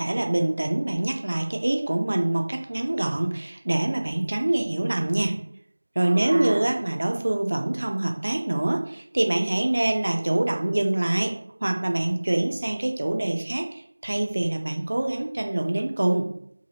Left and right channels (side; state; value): both; inverted; correlation -1.00